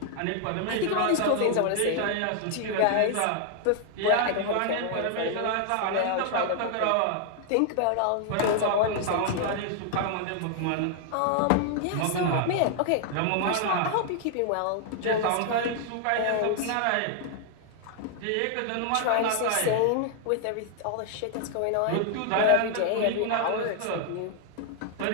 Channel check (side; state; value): both; different; correlation 0.00